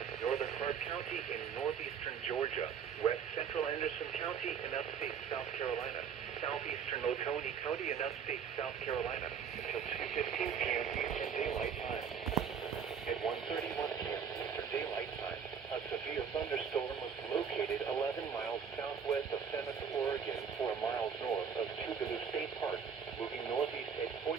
northern Clark County in northeastern Georgia, west central Anderson County in upstate South Carolina, southeastern Oconee County in upstate South Carolina until 2:15 p.m. Eastern Daylight Time. At 1:31 p.m. Eastern Daylight Time, a severe thunderstorm was located 11 miles southwest of Seneca, Oregon, 4 miles north of Tougaloo State Park, moving northeast at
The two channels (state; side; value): quieter; left; 7.1 dB